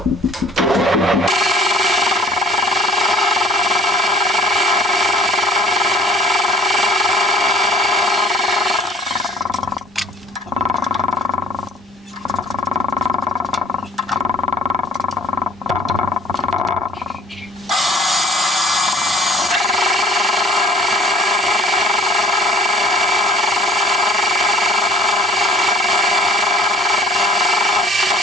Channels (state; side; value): normal; both; correlation 0.53